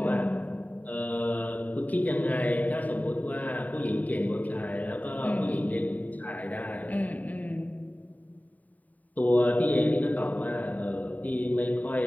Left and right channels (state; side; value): late; right; 0.074 ms